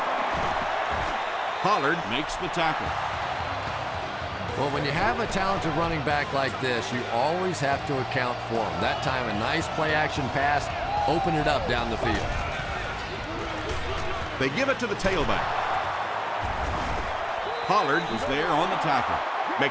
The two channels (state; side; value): identical; both; correlation 1.00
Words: Pollard makes the tackle. Well, when you have a talented running back like this, you always have to account for him. That time, a nice play-action pass, open it up down the field. They give it to the tailback. Pollard was there on the tackle.